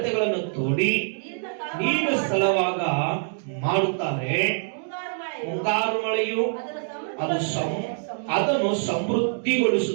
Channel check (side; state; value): left; silent; 62 dB below the other